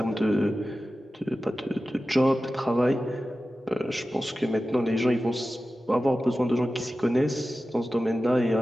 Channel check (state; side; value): normal; both; correlation 0.94